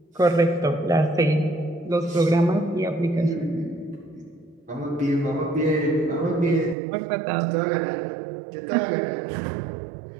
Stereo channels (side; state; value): left; drops out; at 6.8 s